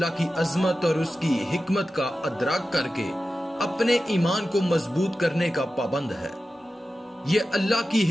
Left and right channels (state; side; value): normal; both; correlation 0.93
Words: کی عظمت اور اس کی حکمت کا ادراک کر کے اپنے ایمان کو مضبوط کرنے کا پابند ہے۔ یہ اللہ کی